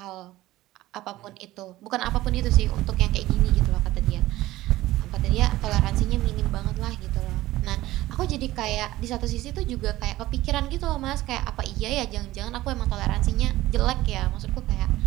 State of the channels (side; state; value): left; quieter; 16.6 dB